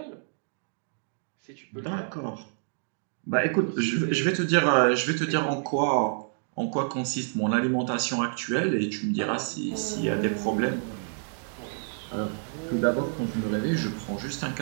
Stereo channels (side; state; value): left; silent; digital silence